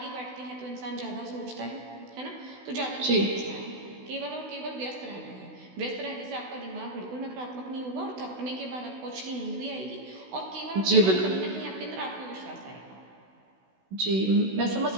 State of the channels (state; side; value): late; left; 16 ms